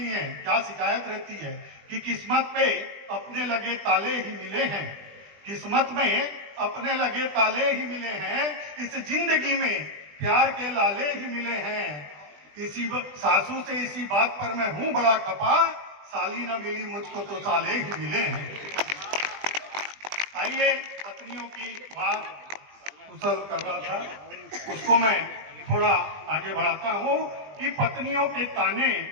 है क्या शिकायत रहती है कि किस्मत पे अपने लगे ताले ही मिले हैं। किस्मत में अपने लगे ताले ही मिले हैं, इस जिंदगी में प्यार के लाले ही मिले हैं। इसी सासू से इसी बात पर मैं हूं बड़ा खपा, साली ना मिली मुझको तो साले ही मिले हैं। आइए पत्नियों की बात कुशल कर रहा था, उसको मैं थोड़ा आगे बढ़ाता हूं कि पत्नियों के ताने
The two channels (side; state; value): left; late; 20 ms